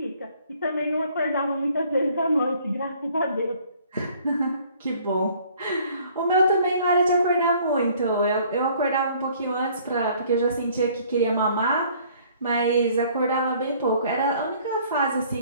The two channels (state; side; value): inverted; both; correlation -0.57